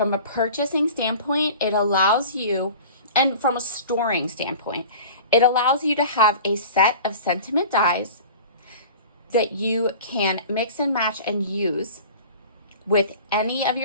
a purchasing standpoint, it allows you, and from a storing standpoint, it allows you to have a set of sentiment dies that you can mix and match and use with any of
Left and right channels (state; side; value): inverted; both; correlation -0.40